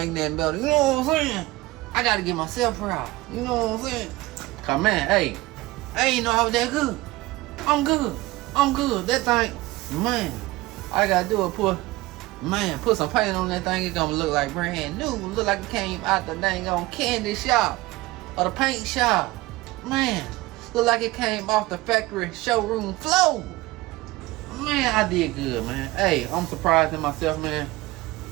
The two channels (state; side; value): quieter; left; 19.7 dB